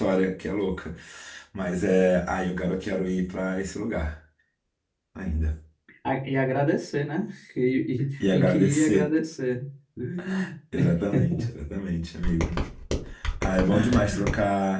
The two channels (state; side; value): identical; both; correlation 1.00